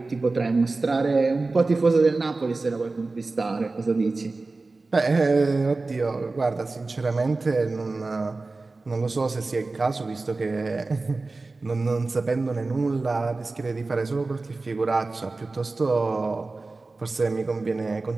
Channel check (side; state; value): left; quieter; 3.5 dB